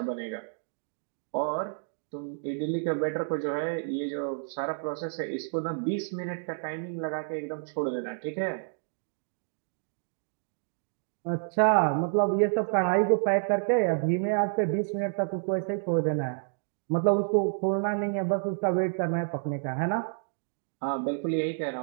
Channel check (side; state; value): left; silent; digital silence